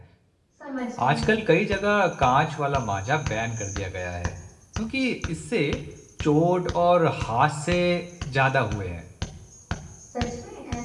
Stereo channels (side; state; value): both; identical; correlation 1.00